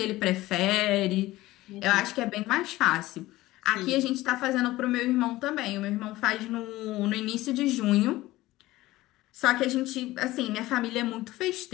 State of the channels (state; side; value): quieter; right; 17.5 dB